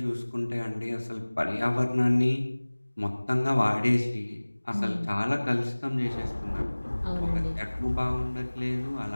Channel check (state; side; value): inverted; both; correlation -1.00